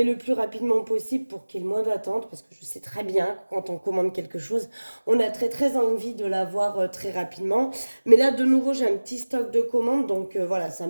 le plus rapidement possible pour qu'il y ait le moins d'attente. Parce que je sais très bien que quand on commande quelque chose, on a très très envie de l'avoir très rapidement. Mais là, de nouveau, j'ai un petit stock de commandes. Donc voilà, ça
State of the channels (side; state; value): both; inverted; correlation -1.00